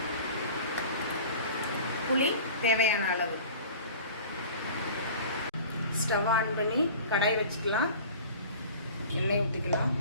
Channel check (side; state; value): both; inverted; correlation -0.41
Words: புளி தேவையான அளவு. ஸ்டவ் ஆன் பண்ணி கடாய் வச்சுக்கலாம். எண்ணெய் ஊற்றிக்கலாம்.